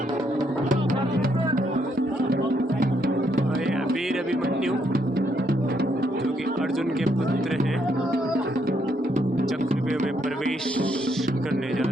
अभिमन्यु जो कि अर्जुन के पुत्र हैं, चक्रव्यूह में प्रवेश करने जा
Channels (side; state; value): both; normal; correlation 0.74